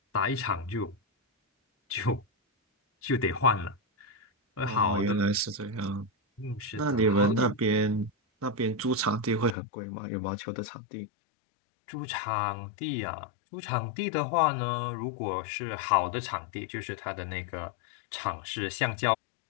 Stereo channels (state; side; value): drops out; right; at 9.6 s